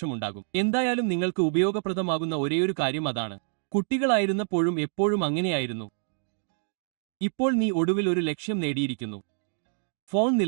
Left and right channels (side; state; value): left; silent; digital silence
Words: എന്തായാലും നിങ്ങൾക്ക് ഉപയോഗപ്രദമാകുന്ന ഒരേയൊരു കാര്യം അതാണ്. കുട്ടികളായിരുന്നപ്പോഴും എപ്പോഴും അങ്ങനെയായിരുന്നു. ഇപ്പോൾ നീ ഒടുവിൽ ഒരു ലക്ഷ്യം നേടിയിരിക്കുന്നു. ഫോൺ